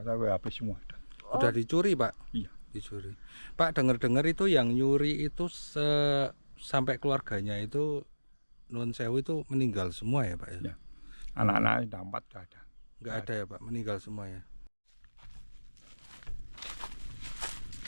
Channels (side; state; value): both; inverted; correlation -1.00